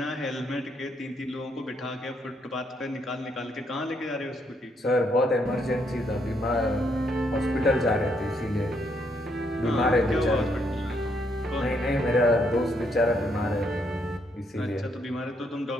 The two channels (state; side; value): normal; both; correlation 0.74